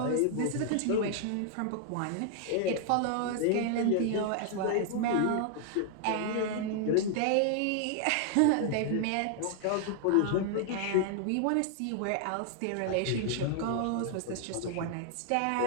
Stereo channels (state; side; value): different; both; correlation 0.00